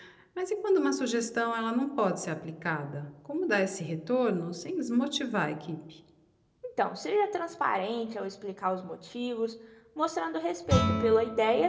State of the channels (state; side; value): identical; both; correlation 1.00